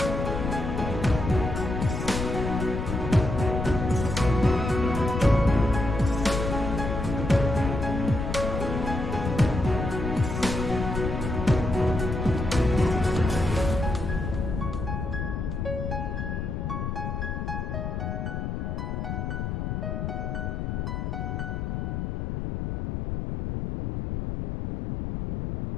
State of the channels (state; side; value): noise; left; rumble, 3 dB below the sound